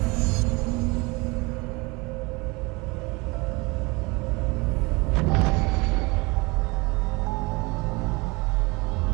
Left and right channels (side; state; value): left; quieter; 25.6 dB